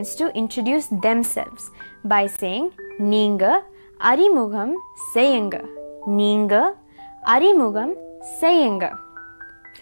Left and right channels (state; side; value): inverted; both; correlation -1.00